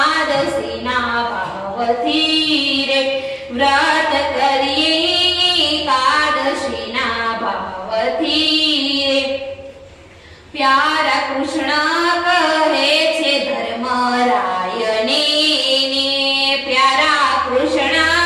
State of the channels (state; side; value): identical; both; correlation 1.00